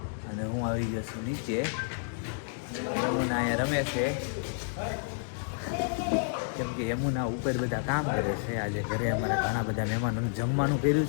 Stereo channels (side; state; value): right; silent; digital silence